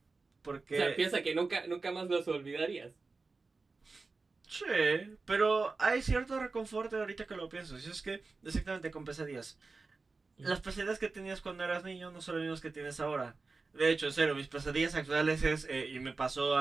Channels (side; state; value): left; quieter; 4.0 dB